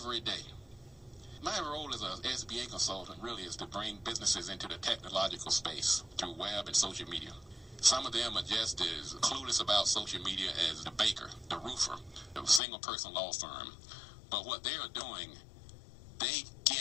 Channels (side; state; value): right; drops out; at 12.6 s